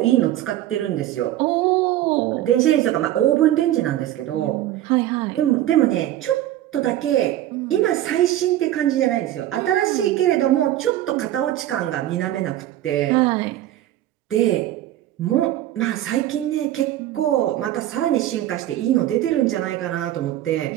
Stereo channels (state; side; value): quieter; left; 13.5 dB